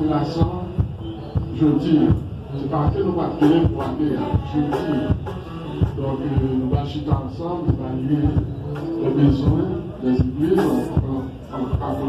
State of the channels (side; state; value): both; identical; correlation 1.00